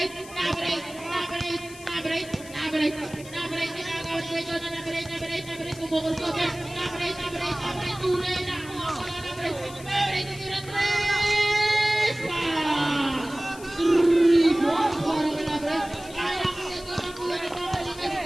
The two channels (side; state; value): left; noise; hiss, 17 dB below the sound